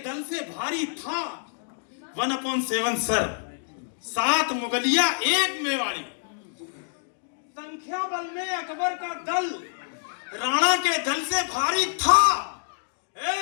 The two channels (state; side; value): silent; right; digital silence